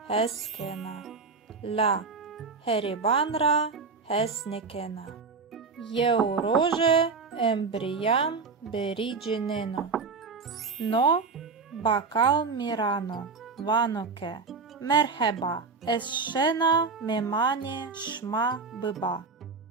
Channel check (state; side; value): quieter; left; 4.6 dB